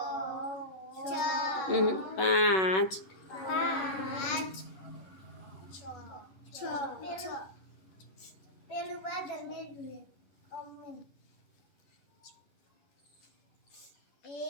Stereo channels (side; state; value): right; late; 11 ms